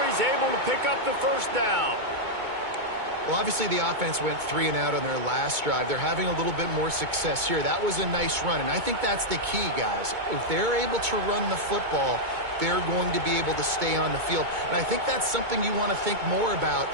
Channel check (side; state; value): left; late; 2.2 ms